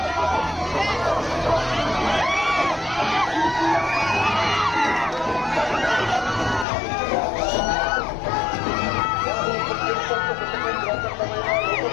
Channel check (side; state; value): right; drops out; at 6.7 s